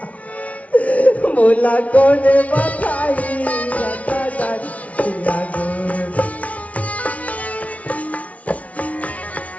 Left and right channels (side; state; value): right; late; 0.066 ms